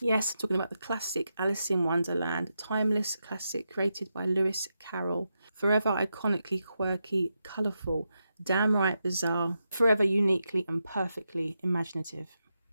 Yes, I'm talking about the classic Alice in Wonderland, timeless classic created by Lewis Carroll. Forever iconically quirky, colourful, downright bizarre, forever uniquely and perfectly imaginative.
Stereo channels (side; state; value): both; inverted; correlation -0.87